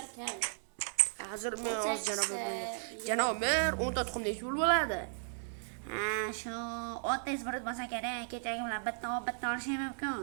kam. Hozir men janob mer 10 ta tuxum nechta bo'ladi? Ha, shu 30 izbrut bo'lsa kerak. Kechagi bilan bitta olishim mumkin.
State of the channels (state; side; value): silent; left; 54 dB below the other